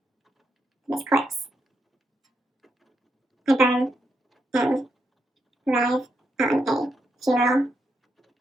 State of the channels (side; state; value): both; normal; correlation 0.81